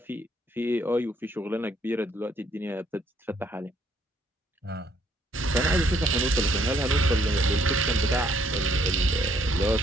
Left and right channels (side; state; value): both; normal; correlation 0.67